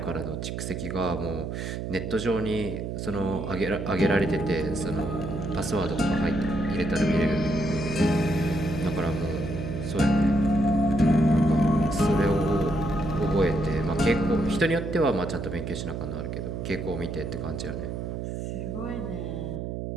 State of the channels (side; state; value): right; noise; hum, 5 dB below the sound